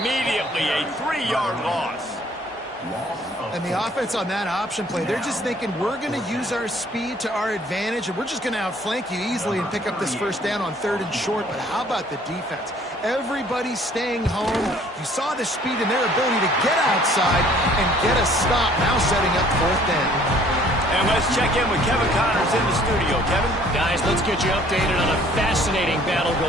A 3-yard loss. And the offense on that option play, they're just thinking we're going to use our speed to our advantage, and we're just going to outflank you easily and pick up this first down on 3rd and short. But how about the defense? Everybody's staying home. You saw the speed and their ability to get outside and get a stop, now setting up 4th down. And let's check in with Kevin Connors in the studio. Kevin? Guys, let's get you updated on a fascinating battle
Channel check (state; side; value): normal; both; correlation 0.57